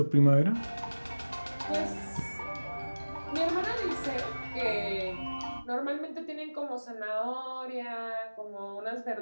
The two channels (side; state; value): both; inverted; correlation -1.00